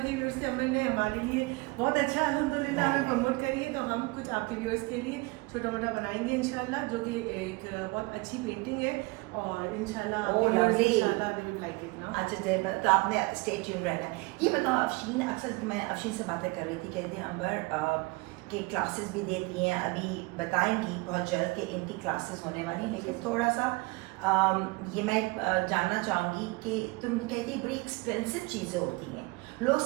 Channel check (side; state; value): left; quieter; 24.9 dB